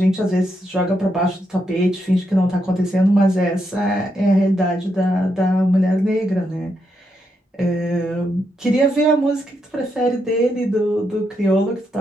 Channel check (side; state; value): both; normal; correlation 0.81